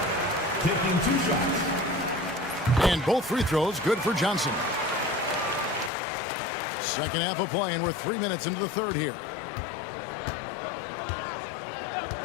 taking 2 shots. And both free throws good for Johnson. Second half of play, and we're 3 minutes into the third here.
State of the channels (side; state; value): right; drops out; at 5.9 s